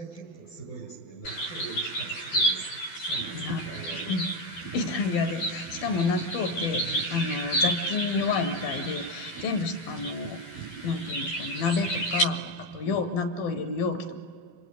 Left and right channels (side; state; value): right; late; 12 ms